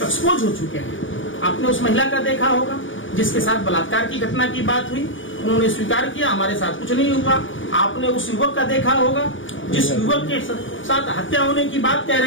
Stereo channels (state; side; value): late; right; 0.56 ms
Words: एक्सपोज हो चुके हैं। आपने उस महिला का देखा होगा जिसके साथ बलात्कार की घटना की बात हुई, उन्होंने स्वीकार किया हमारे साथ कुछ नहीं हुआ। आपने उस युवक का देखा होगा जिस युवक के साथ हत्या होने की बात कह